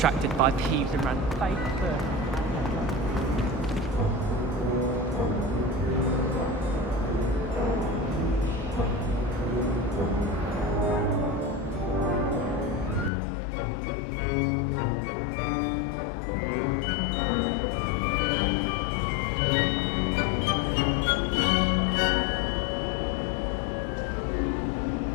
by thieves and ran face first.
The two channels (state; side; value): drops out; right; at 13.1 s